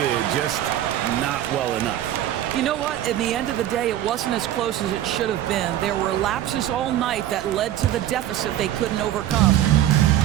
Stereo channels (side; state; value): left; quieter; 12.3 dB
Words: just not well enough. You know what? In the end of the day, it wasn't as close as it should have been. There were lapses all night that led to the deficit they couldn't overcome.